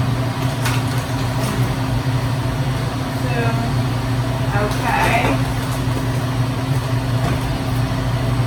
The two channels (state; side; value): identical; both; correlation 1.00